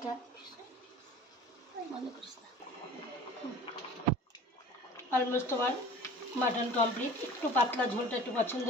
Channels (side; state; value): both; normal; correlation 0.43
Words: মনে করিস না। অলমোস্ট আমার মাটন কমপ্লিট। একটু পাতলা ঝোলটা একটু পছন্দ